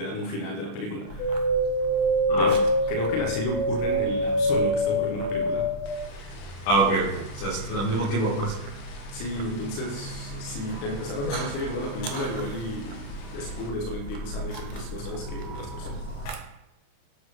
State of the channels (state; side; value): late; right; 36 ms